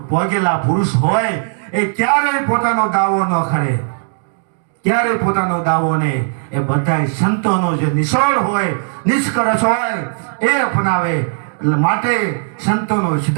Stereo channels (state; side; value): silent; left; digital silence